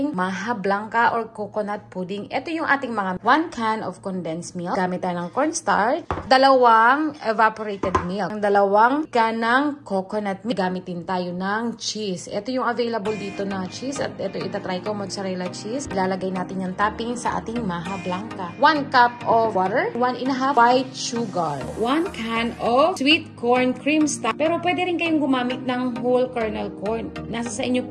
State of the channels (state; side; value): identical; both; correlation 1.00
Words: maha blanca or coconut pudding. Ito yung ating mga 1 can of condensed milk. Gamit tayo ng cornstarch, 2 evaporated milk, 2 can ng coconut milk. Gamitin tayo ng cheese. Ito yung available dito na cheese at ito itatry ko, mozzarella cheese. Ilalagay natin yung topping sa ating maha blanca. 1 cup of water, 1.5 white sugar, 1 can of sweet corn cream starch. Pero pwede rin kayong gumamit ng whole kernel corn. Nasa sa inyo